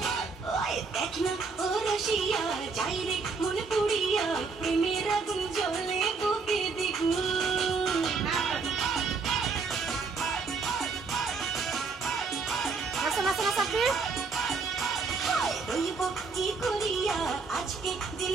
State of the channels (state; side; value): quieter; left; 4.6 dB